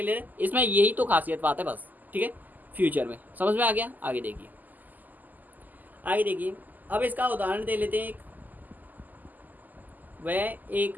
है? इसमें यही तो खासियत बात है बस, ठीक है। फ्यूचर में समझ में आ गया? आगे देखिए, आगे देखिए। अब इसका उदाहरण दे लेते हैं। वह एक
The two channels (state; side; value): late; left; 0.083 ms